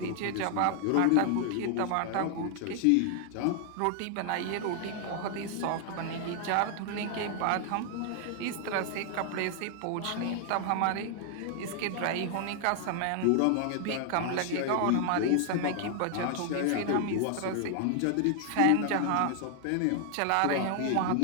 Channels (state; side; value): different; both; correlation 0.00